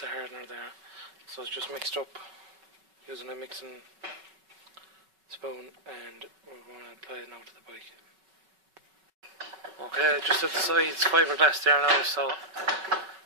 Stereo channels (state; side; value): late; left; 5.3 ms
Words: hardener there. So it's just mixed up using a mixing spoon, and we're going to apply it now to the bike. Okay, just at the sides fiberglass there now, so